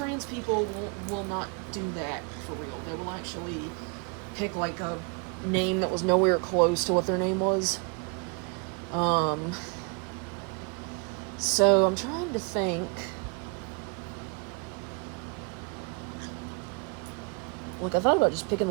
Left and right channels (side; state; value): left; quieter; 33.5 dB